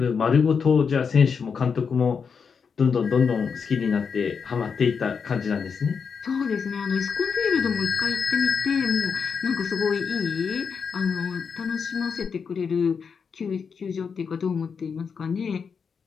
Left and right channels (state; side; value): quieter; right; 6.0 dB